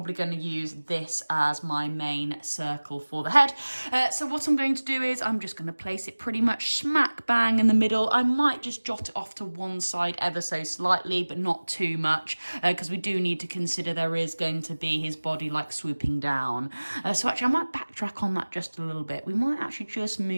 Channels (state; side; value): inverted; both; correlation -1.00